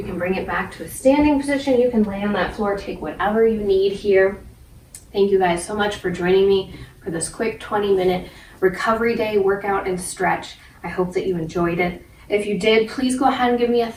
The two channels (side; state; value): both; identical; correlation 1.00